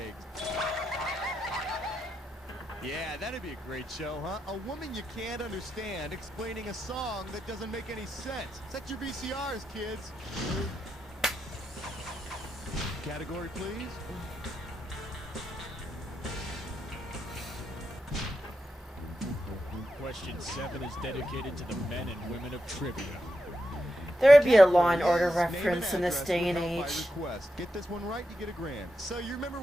Yeah, that'd be a great show, huh? A woman you can't understand explaining a song that doesn't make any sense. Set your VCRs, kids. Category, please. Question 7 is dedicated to the men and women of trivia. There would be a Law and Order reference in this day and age. Get this one right, you get $1,000. So you remember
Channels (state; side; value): normal; both; correlation 0.86